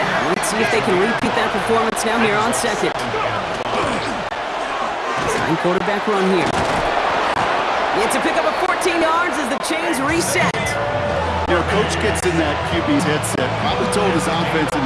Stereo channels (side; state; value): both; identical; correlation 1.00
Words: Let's see if they can repeat that performance now here on second. Design quarterback run here. It's a pickup of 14 yards as the chains reset. You know, coach gets in that QB's headset, probably told his offense